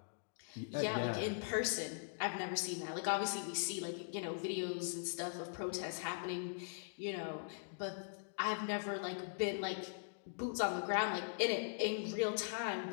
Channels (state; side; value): silent; right; digital silence